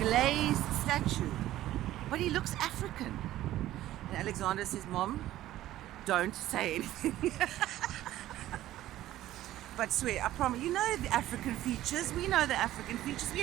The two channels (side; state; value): left; quieter; 14.3 dB